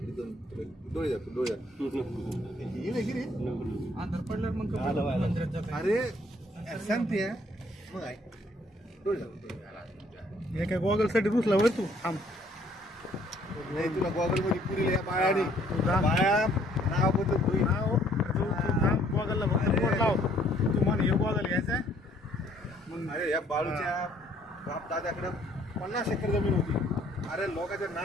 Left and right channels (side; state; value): both; normal; correlation 0.63